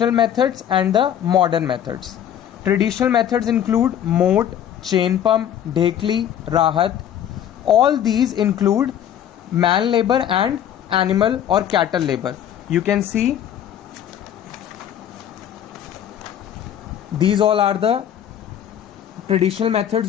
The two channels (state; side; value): quieter; right; 10.1 dB